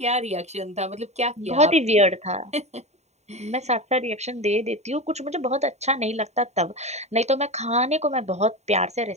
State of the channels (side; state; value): left; late; 0.32 ms